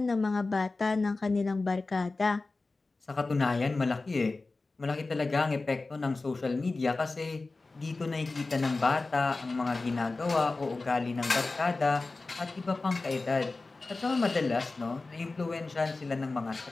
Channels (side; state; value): right; quieter; 3.5 dB